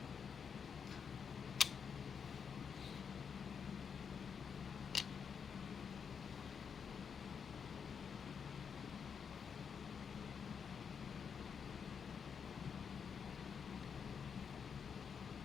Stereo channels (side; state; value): right; quieter; 6.6 dB